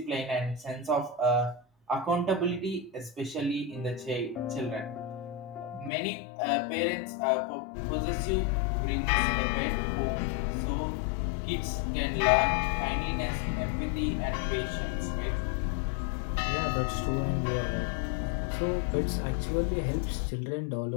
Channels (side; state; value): right; drops out; at 5.9 s